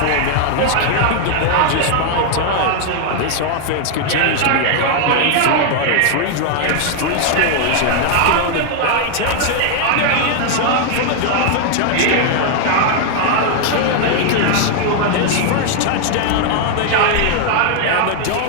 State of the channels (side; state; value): both; different; correlation 0.00